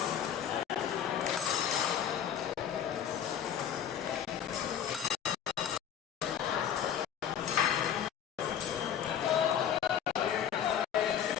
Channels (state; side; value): quieter; right; 9.2 dB